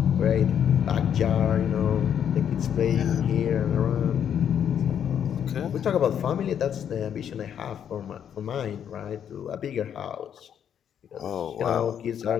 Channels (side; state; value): right; quieter; 8.9 dB